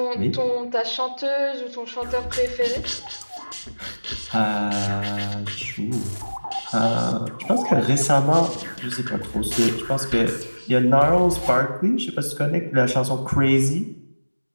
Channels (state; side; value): inverted; both; correlation -1.00